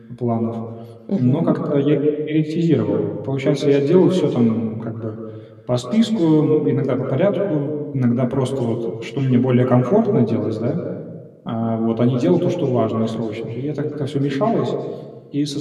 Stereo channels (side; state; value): both; identical; correlation 1.00